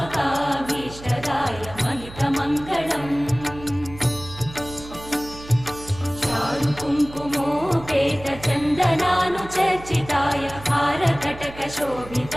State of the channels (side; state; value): right; noise; hum, 16 dB below the sound